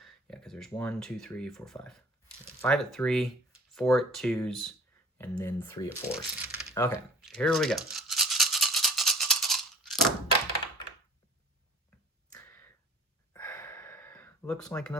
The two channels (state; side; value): normal; both; correlation 0.50